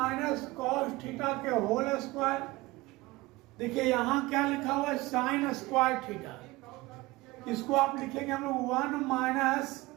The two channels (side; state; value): left; quieter; 20.5 dB